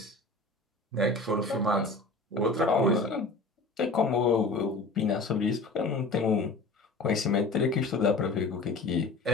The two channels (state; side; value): quieter; right; 3.2 dB